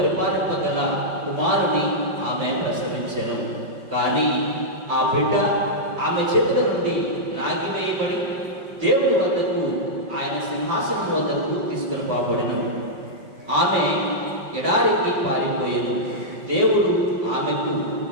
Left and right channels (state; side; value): late; left; 5.8 ms